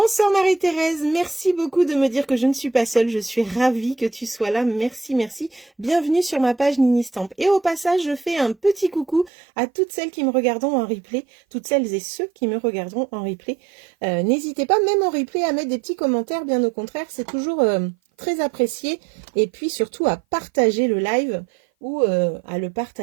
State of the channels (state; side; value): drops out; left; at 9.3 s